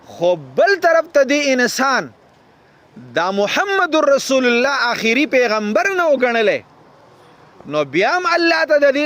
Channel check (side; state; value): both; identical; correlation 1.00